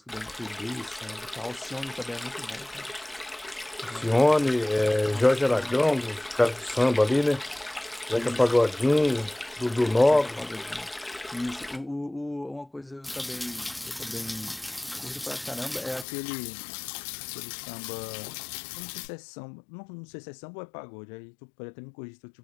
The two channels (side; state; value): right; drops out; at 16.1 s